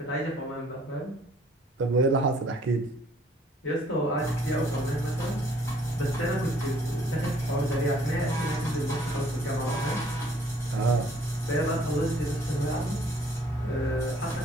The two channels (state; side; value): normal; both; correlation 0.60